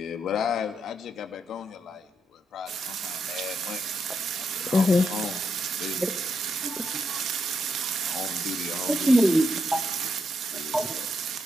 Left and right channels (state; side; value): normal; both; correlation 0.81